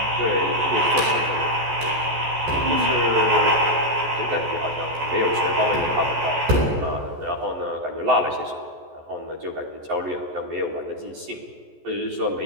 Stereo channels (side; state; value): left; late; 14 ms